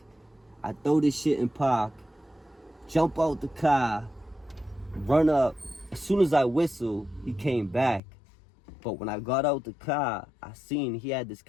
I throw this shit in park, jump out the car, run up. As soon as I whistle, he came back. But when I got out the car, I seen he had this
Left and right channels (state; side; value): drops out; right; at 8.0 s